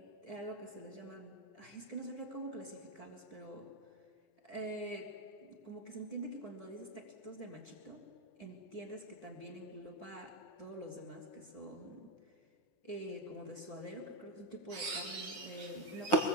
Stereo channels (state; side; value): late; right; 9.9 ms